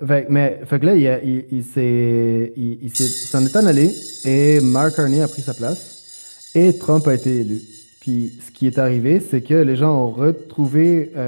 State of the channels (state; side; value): inverted; both; correlation -1.00